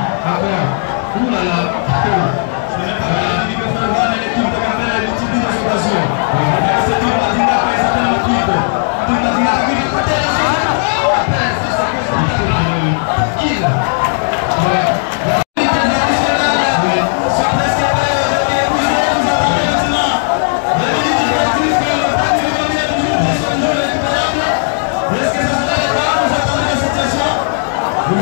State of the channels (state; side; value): silent; right; digital silence